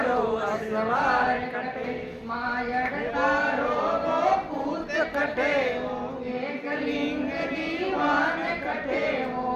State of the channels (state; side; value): identical; both; correlation 1.00